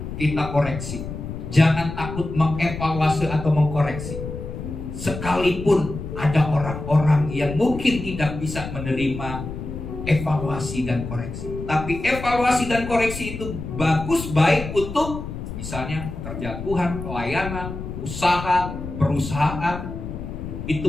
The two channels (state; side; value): noise; left; rumble, 8 dB below the sound